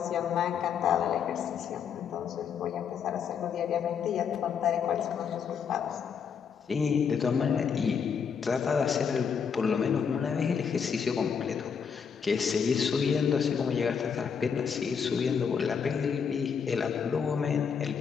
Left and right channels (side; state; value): right; quieter; 6.8 dB